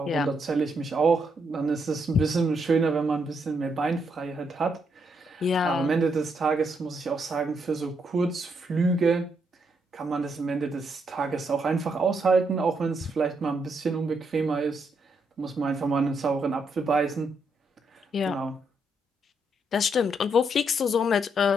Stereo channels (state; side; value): normal; both; correlation 0.77